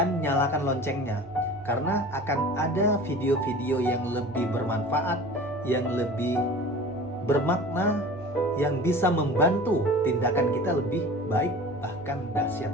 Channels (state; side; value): normal; both; correlation 0.39